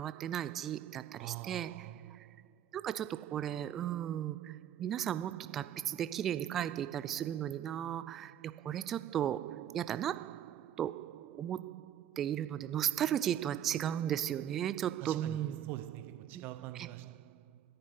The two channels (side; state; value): left; quieter; 10.5 dB